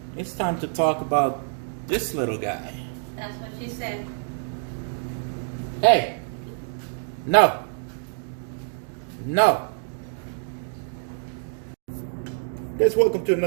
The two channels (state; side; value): silent; left; digital silence